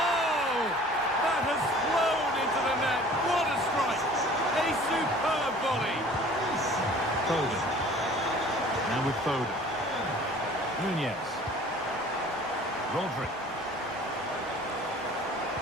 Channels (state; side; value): normal; both; correlation 0.48